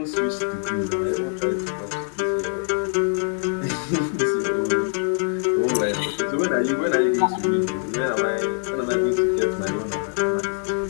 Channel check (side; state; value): right; silent; digital silence